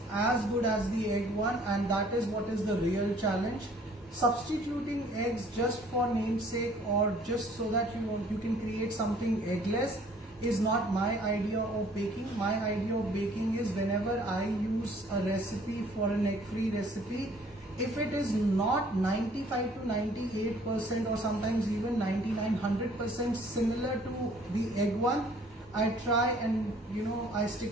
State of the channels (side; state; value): both; normal; correlation 0.57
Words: as good as the egg one, and that is what is the real challenge. Substituting eggs just for namesake or just so that you can create something eggless is not my idea of baking. My idea of baking is whenever I use a recipe for an egg-free recipe, if it is not 95 to 98% or sometimes even 99-100% similar to the egg one, I try and I